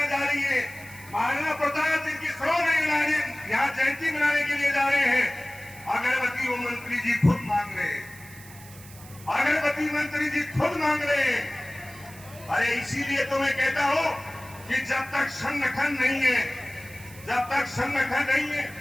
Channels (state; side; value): noise; right; hiss, 19 dB below the sound